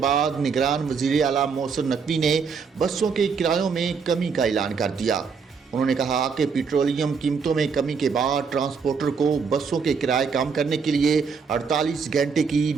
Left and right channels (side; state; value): left; quieter; 5.6 dB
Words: निगरान वज़ीर आला मोहसिन नकवी ने बसों के किरायों में कमी का ऐलान कर दिया। उन्होंने कहा कि पेट्रोलियम कीमतों में कमी के बाद ट्रांसपोर्टर को बसों के किराए कम करने के लिए 48 घंटे की